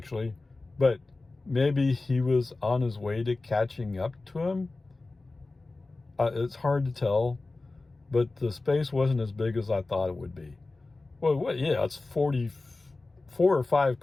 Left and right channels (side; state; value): right; quieter; 3.3 dB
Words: but maybe he was on his way to catching up to him. It's hard to tell, but the space wasn't as big as I thought it would be. Well, yeah, it's 44 or 5